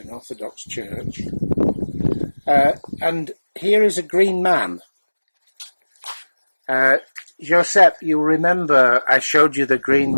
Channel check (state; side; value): inverted; both; correlation -1.00